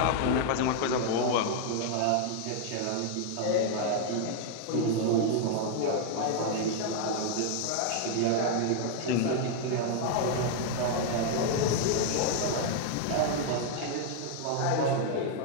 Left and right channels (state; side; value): different; both; correlation 0.00